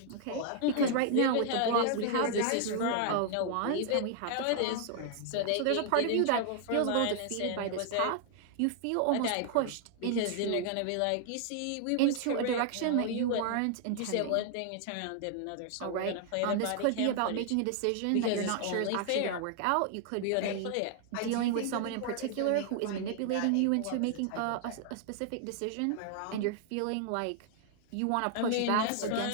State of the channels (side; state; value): both; different; correlation 0.00